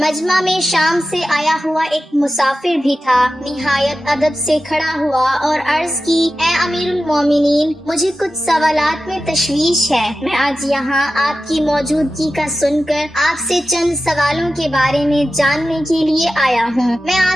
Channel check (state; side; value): normal; both; correlation 0.93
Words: مجمع میں شام سے آیا ہوا ایک مسافر بھی تھا۔ نہایت ادب سے کھڑا ہوا اور عرض کی، اے امیر المومنین، مجھے کچھ سوالات میں تشویش ہے۔ میں آج یہاں آپ کی موجودگی کا سن کر آپ سے چند سوالوں کے بارے میں جاننے کے لیے آیا ہوں۔ میں